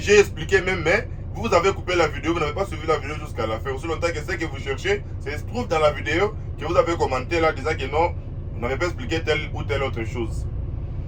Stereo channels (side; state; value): both; identical; correlation 1.00